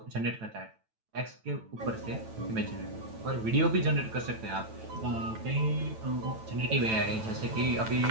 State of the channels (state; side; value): late; left; 9.1 ms